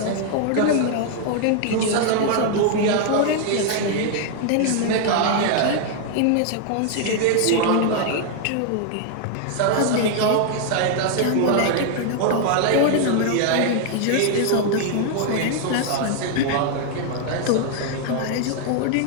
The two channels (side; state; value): both; different; correlation 0.00